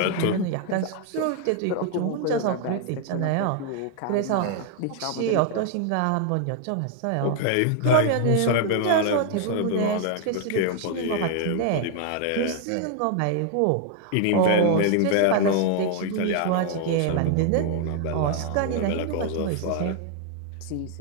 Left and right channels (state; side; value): different; both; correlation 0.00